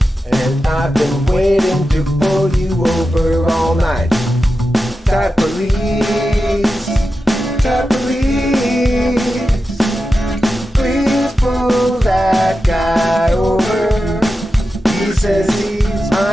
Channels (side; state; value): both; normal; correlation 0.91